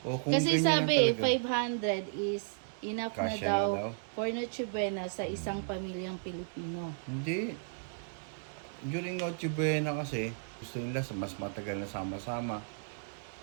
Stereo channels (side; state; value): left; silent; digital silence